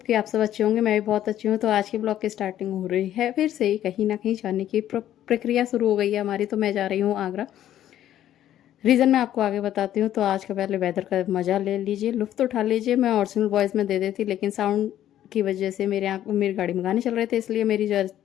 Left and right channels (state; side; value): quieter; right; 11.9 dB